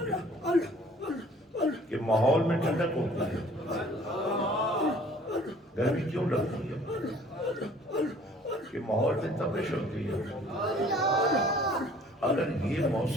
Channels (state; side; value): normal; both; correlation 0.54